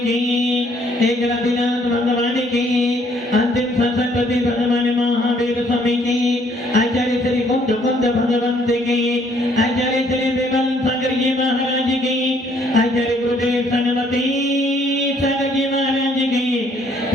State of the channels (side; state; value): both; normal; correlation 0.64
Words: की एक रतिनाथ भगवान की अंतिम सरस्वती भगवान महावीर स्वामी की आचार्य श्री कुंद कुंद भगवंत की आचार्य श्री विमल सागर जी महाराज की आचार्य गुरुदेव सनमती सागर जी महाराज की